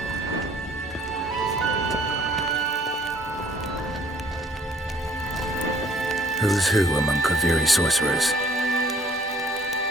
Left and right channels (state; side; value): normal; both; correlation 0.58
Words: Who's who among Kaviri sorcerers?